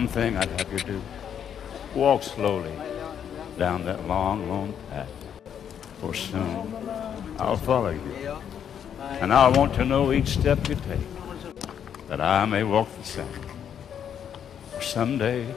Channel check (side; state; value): right; quieter; 8.7 dB